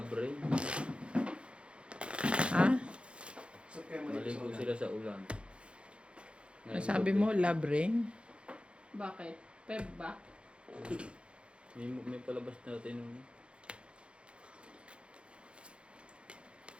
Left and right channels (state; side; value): late; left; 0.058 ms